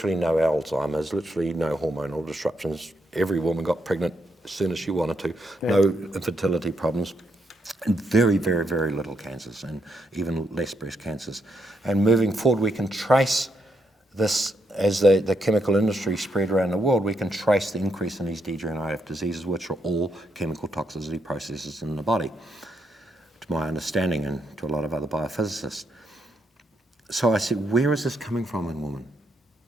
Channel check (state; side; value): normal; both; correlation 0.79